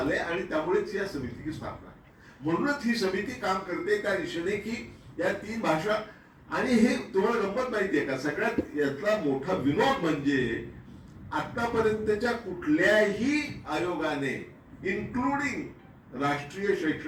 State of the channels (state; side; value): identical; both; correlation 1.00